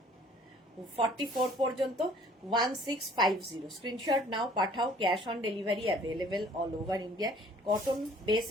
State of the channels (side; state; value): both; normal; correlation 0.54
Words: 44 পর্যন্ত 1650। স্ক্রিনশট নাও, পাঠাও, cash on delivery available all over India. Cotton base